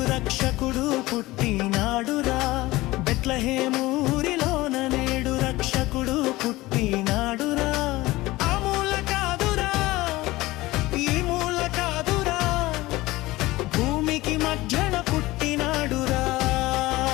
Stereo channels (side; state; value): right; quieter; 19.2 dB